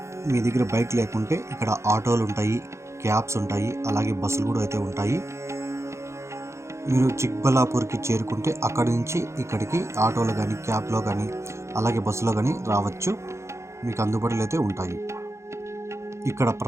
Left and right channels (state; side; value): late; left; 0.14 ms